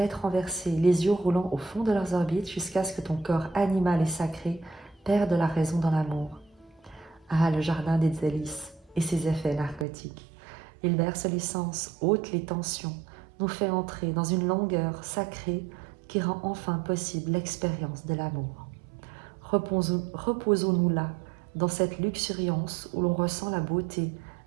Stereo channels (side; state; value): left; drops out; at 9.9 s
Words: renversée, les yeux roulant au fond de leurs orbites jusqu'à ce que ton corps animal et sacré perde la raison dans l'amour. Ah, le jardin des délices et ses effets narcotiques. Il berce les sens, ôte les tensions, nous fait entrer dans une longueur sacrée qui rend enfin possible l'expérience de l'amour. Reposons-nous là, dans cette luxuriance où l'on ressent la beauté